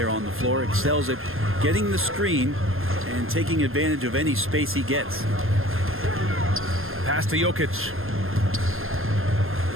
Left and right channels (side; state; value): left; late; 0.60 ms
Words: on the floor. Excels at getting the screen and taking advantage of any space he gets. Pass to Jokic.